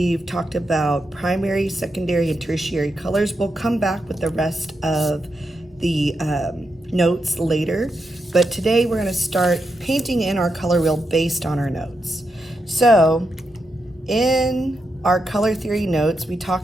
talked about primary, secondary, and tertiary colors. We'll come back with the rest of the notes later, but today we're going to start painting in our color wheel based on our notes. So, in our color theory notes, we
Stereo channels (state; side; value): normal; both; correlation 0.85